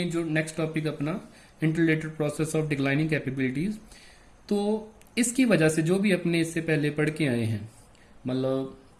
जो नेक्स्ट टॉपिक अपना interrelated process of declining capabilities, तो इसकी वजह से जो भी अपने इससे पहले पढ़ के आए हैं, मतलब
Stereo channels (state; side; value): identical; both; correlation 1.00